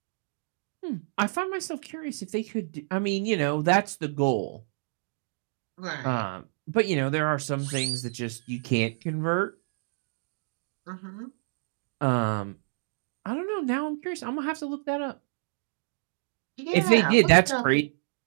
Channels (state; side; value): silent; left; digital silence